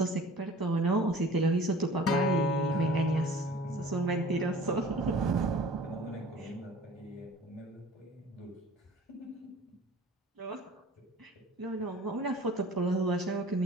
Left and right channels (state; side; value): normal; both; correlation 0.46